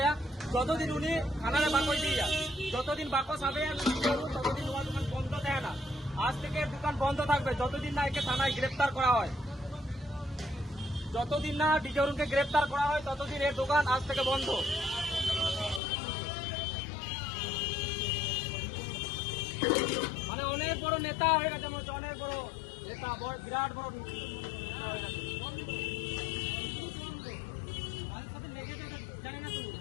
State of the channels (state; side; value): drops out; right; at 15.8 s